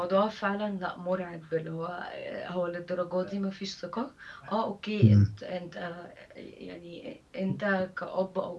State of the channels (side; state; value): both; identical; correlation 1.00